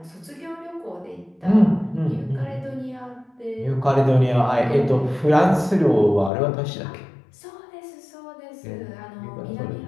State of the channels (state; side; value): drops out; right; at 6.3 s